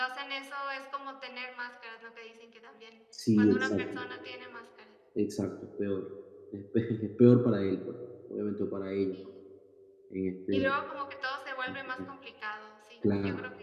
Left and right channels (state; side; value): identical; both; correlation 1.00